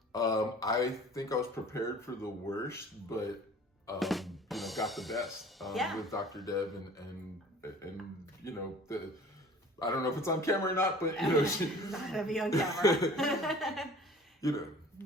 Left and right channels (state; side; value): normal; both; correlation 0.47